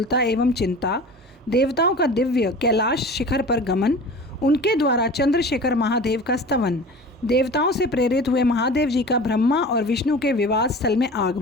एवं चिंता, देवताओं का दिव्य कैलाश शिखर पर गमन, उनके द्वारा चंद्रशेखर महादेव का स्तवन, देवताओं से प्रेरित हुए महादेव जी का ब्रह्मा और विष्णु के विवाद स्थल में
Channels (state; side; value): normal; both; correlation 0.38